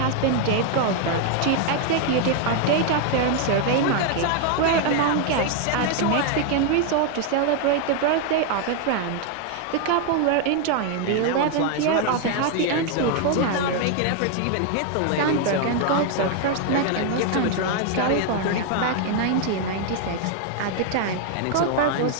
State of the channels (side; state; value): both; different; correlation 0.00